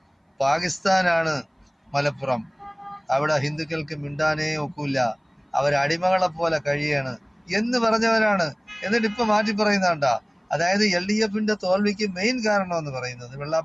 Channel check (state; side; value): identical; both; correlation 1.00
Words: പാകിസ്ഥാനാണ് മലപ്പുറം, അവിടെ ഹിന്ദുക്കൾക്ക് മിണ്ടാനേ ഒക്കില്ല, അവരടിമകളെ പോലെ കഴിയാണ് എന്ന് പറഞ്ഞവരാണ്. എന്നിട്ട് ഇപ്പൊ മാറ്റി പറയുന്നണ്ട. അതായത് LDFന്റെ തോൽവിക്ക് മെയിൻ കാരണം എന്ന് പറയുന്നത്